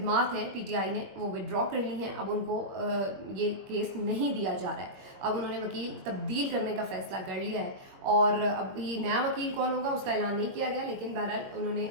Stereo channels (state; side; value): late; left; 21 ms